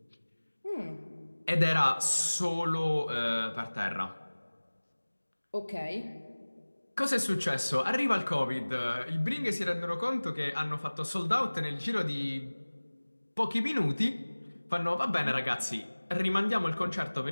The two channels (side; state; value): both; inverted; correlation -1.00